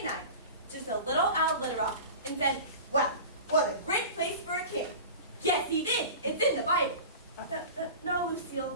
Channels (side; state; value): both; inverted; correlation -0.35